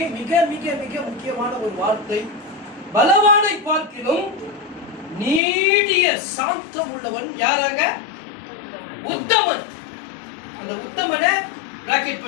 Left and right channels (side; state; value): right; drops out; at 5.4 s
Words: மிக மிக மிக முக்கியமான ஒரு வார்த்தை. பலவானை பார்க்கிலும் நீடிய சாந்தம் உள்ளவன் யாராங்க? உத்தமன். அந்த உத்தமனை பிராக்கெட்